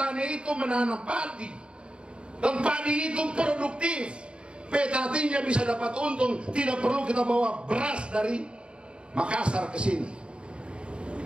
itu menanam padi, dan padi itu produktif. Petaninya bisa dapat untung, tidak perlu kita bawa beras dari Makassar ke sini.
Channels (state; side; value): late; left; 0.054 ms